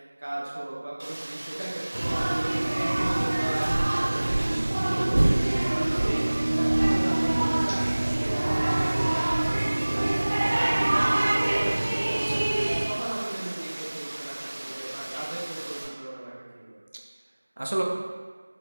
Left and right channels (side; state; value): both; inverted; correlation -1.00